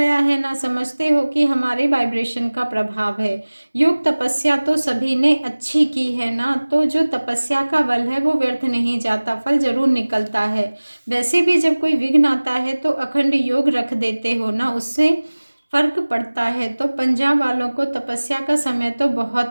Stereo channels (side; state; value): both; inverted; correlation -1.00